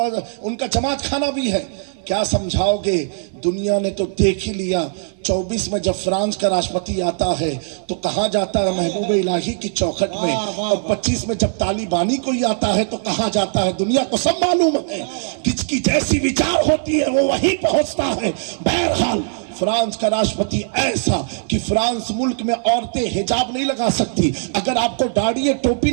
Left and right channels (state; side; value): silent; left; 56 dB below the other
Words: کا جماعت خانہ بھی ہے، کیا سمجھاؤ گے؟ دنیا نے تو دیکھ ہی لیا۔ 24 میں جب فرانس کا راشٹرپتی آتا ہے تو کہاں جاتا ہے؟ محبوب الہی کی چوکھٹ میں، اور 25 میں جب طالبانی کوئی آتا ہے تو کہاں جاتا ہے؟ دنیا کو سب معلوم ہے، کس کی جیسی وچار ہوتی ہے وہ وہیں پہنچتا ہے۔ بہرحال فرانس کا راشٹرپتی ایسا کہ فرانس ملک میں عورتیں حجاب نہیں لگا سکتی، اگر آپ کو داڑھی ہے ٹوپی